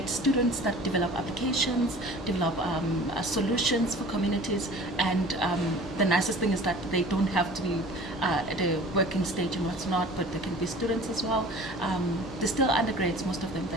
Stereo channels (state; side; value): normal; both; correlation 0.44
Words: students that develop applications, develop solutions for communities, and the nicest thing is that they don't have to be at a working stage and what's not, but they can be students as well. They're still undergrads, most of them,